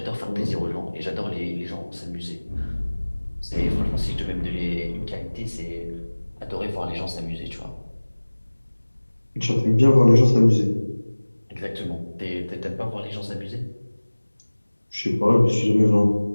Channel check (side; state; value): both; inverted; correlation -1.00